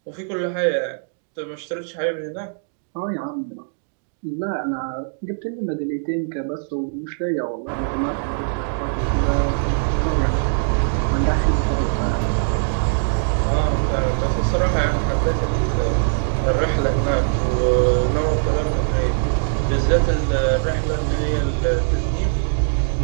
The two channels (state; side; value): silent; left; digital silence